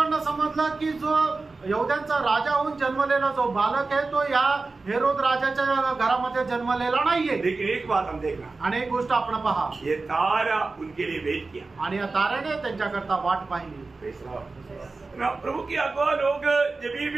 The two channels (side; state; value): left; quieter; 3.7 dB